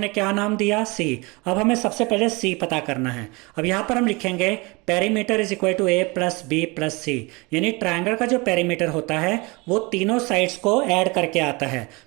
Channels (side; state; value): left; quieter; 26.2 dB